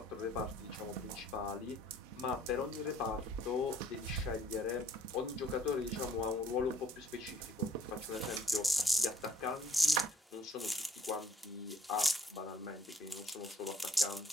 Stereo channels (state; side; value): normal; both; correlation 0.60